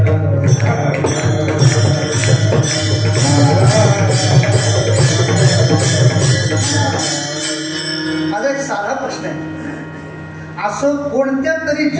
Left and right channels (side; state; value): both; identical; correlation 1.00